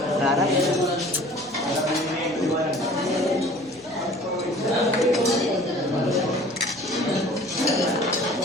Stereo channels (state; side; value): noise; right; hum, 28 dB below the sound